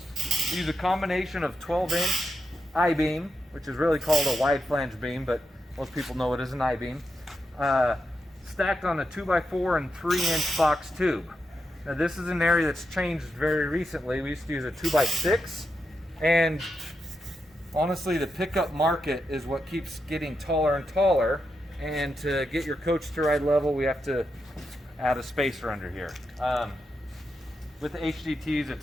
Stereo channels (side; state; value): both; normal; correlation 0.85